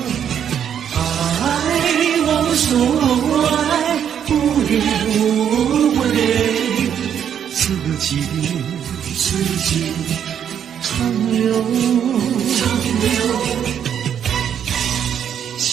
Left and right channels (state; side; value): quieter; left; 8.8 dB